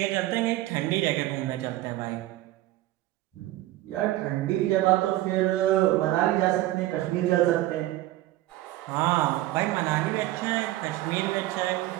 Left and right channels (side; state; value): left; quieter; 16.4 dB